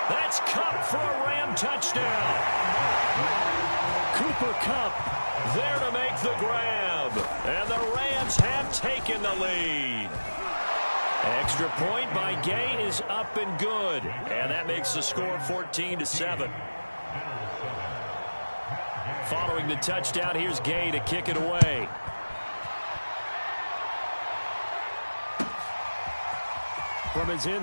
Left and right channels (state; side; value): inverted; both; correlation -1.00